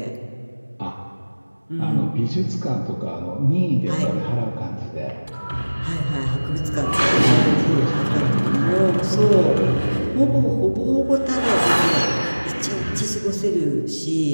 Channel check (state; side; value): inverted; both; correlation -1.00